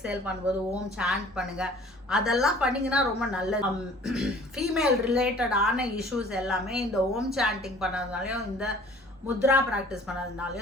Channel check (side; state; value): both; normal; correlation 0.51